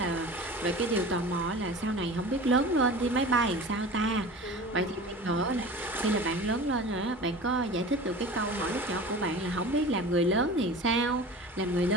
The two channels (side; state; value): both; normal; correlation 0.36